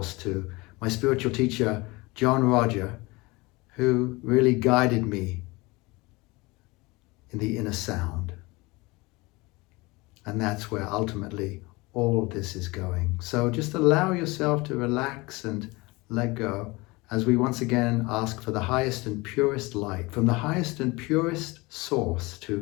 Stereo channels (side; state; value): right; quieter; 23.6 dB